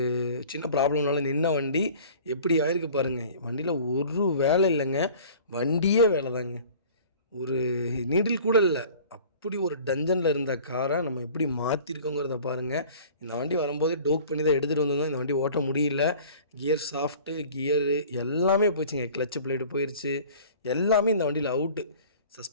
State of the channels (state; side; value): inverted; both; correlation -0.46